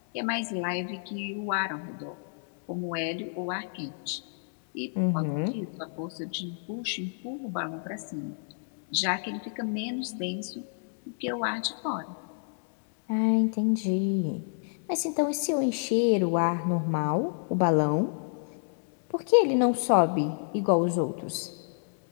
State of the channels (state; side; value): silent; right; digital silence